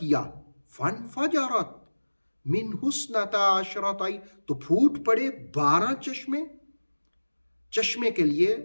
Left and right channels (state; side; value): inverted; both; correlation -1.00